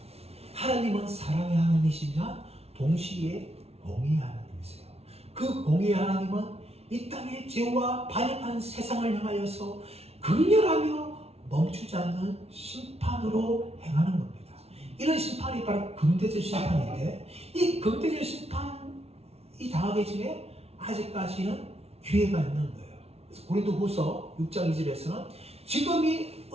하나님은 사랑의 하나님이시지만 동시에 공의의 하나님이세요. 그 공의의 하나님은 이 땅의 죄와 반역한 세상을 향하여서 극렬하며 멈추지 않는 심판으로 행하는 겁니다. 이런 심판이 바로 금대접 심판인데 이 금대접 심판이 당하기 전에 아직까지는 기회가 있는 거예요. 그래서 고린도후서 6장 2절에서는 지금이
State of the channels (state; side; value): late; left; 0.30 ms